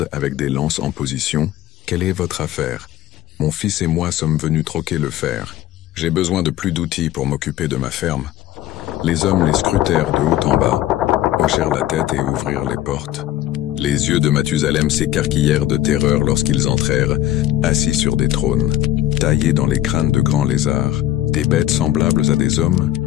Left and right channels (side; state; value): right; quieter; 13.4 dB